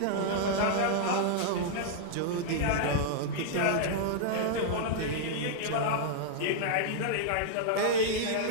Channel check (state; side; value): different; both; correlation -0.01